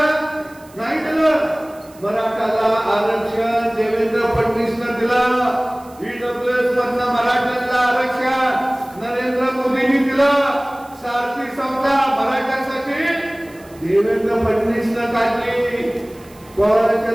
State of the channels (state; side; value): noise; right; hiss, 26 dB below the sound